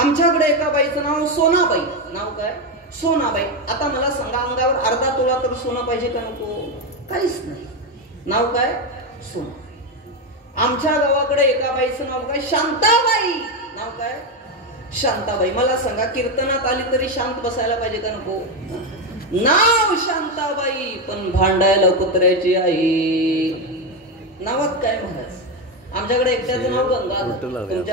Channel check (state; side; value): normal; both; correlation 0.10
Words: आमच्याकडे एका बाईचं नाव सोनाबाई. नाव काय? सोनाबाई. आता मला सांगा, अंगावर अर्धा तोळा तर सोनं पाहिजे का नको? काहीच नाही. नाव काय? सोना. आमच्या गावाकडे एका बाईचं नाव काय? शांताबाई. नाव काय? शांताबाई. मला सांगा, कीर्तनात आली तरी शांत बसायला पाहिजे का नको? नाव शांताबाई, पण भांडायला कुत्र्याची आई. नावात काय महाराज? आमच्याकडे एकट्याचं नाव गंगाधर,